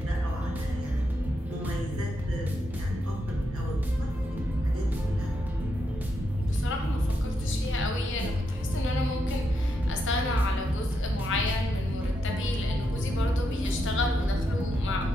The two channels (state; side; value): normal; both; correlation 0.82